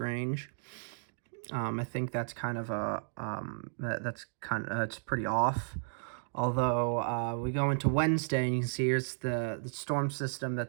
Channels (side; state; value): left; silent; digital silence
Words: I think that's kind of it's pretty off. Although we go into Wednesday and you can see here's the storm system